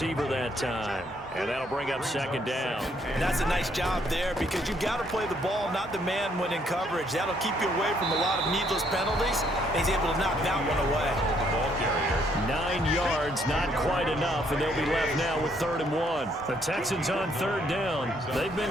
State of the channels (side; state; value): both; normal; correlation 0.69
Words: that time. And that'll bring up second down. And that's a nice job there because you've got to play the ball, not the man when in coverage. That'll keep you away from a lot of needless penalties. And he's able to knock that one away. 9 yards, not quite enough, and they'll be left now with 3rd and 1. The Texans on 3rd down. They've